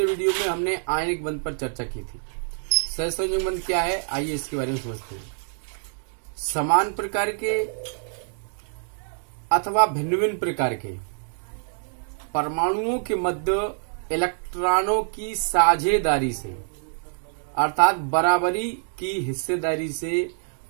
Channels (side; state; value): left; silent; digital silence